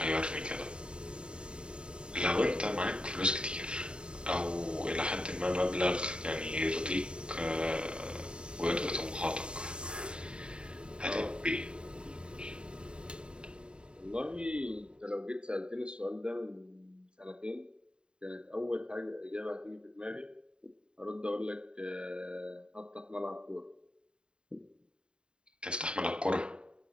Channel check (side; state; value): left; late; 0.051 ms